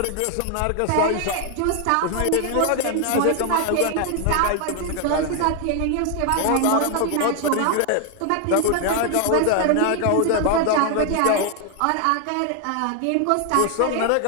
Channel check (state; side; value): different; both; correlation 0.00